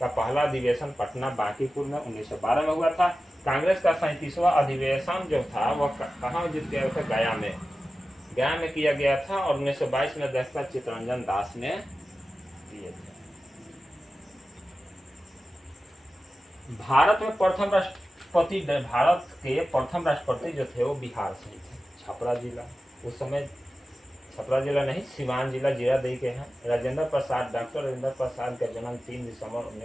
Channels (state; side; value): normal; both; correlation 0.94